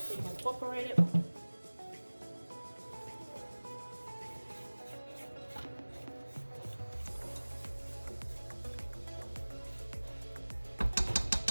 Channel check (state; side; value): inverted; both; correlation -1.00